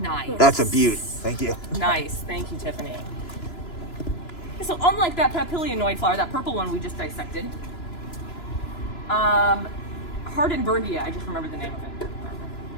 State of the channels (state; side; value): late; right; 2.9 ms